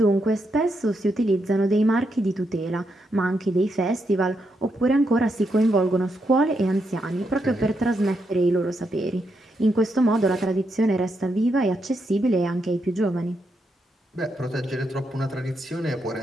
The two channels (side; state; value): both; normal; correlation 0.81